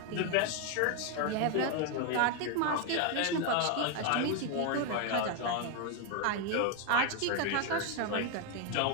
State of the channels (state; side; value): different; both; correlation 0.01